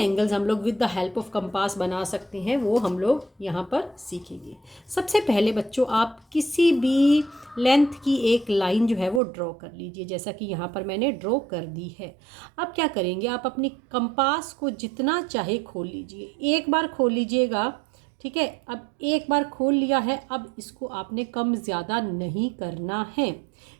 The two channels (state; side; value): drops out; left; at 9.2 s